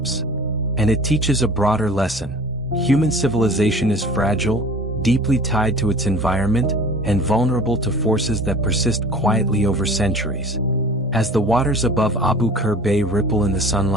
And it teaches a broader lesson. Human civilization is fragile, deeply tied to its environment, and vulnerable to forces that persist quietly over centuries. As the waters above Abu Qir Bay ripple in the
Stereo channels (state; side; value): normal; both; correlation 0.42